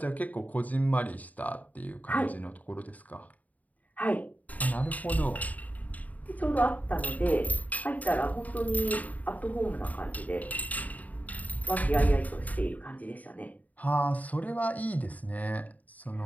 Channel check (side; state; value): right; late; 0.074 ms